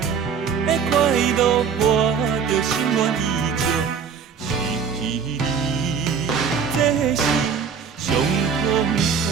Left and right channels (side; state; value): left; quieter; 6.5 dB